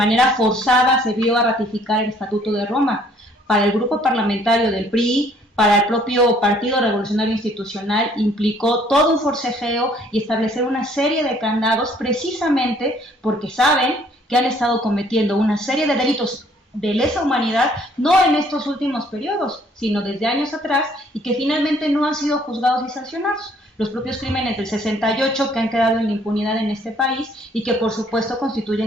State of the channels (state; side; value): normal; both; correlation 0.61